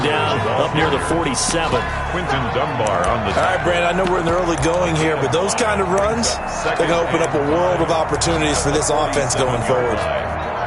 down up near the 47. Quinton Dunbar on the... All right, Brandon, I know we're in the early going here, but those kind of runs, they're going to open up a world of opportunities for this offense going forward.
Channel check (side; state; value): both; identical; correlation 1.00